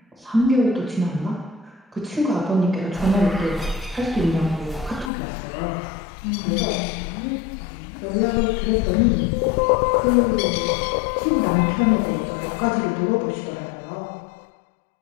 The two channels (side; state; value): right; drops out; at 5.1 s